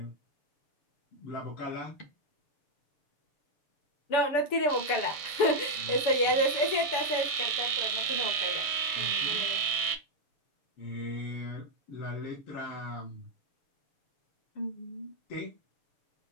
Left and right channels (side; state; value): right; late; 6.9 ms